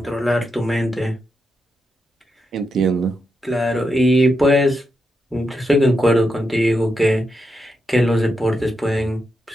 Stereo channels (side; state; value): both; normal; correlation 0.85